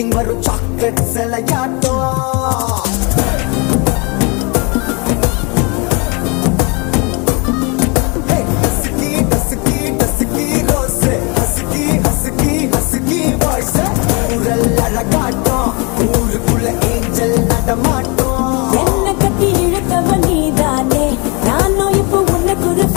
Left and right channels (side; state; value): right; quieter; 30.7 dB